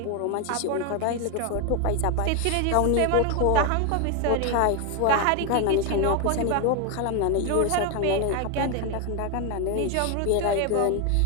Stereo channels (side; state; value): both; different; correlation 0.01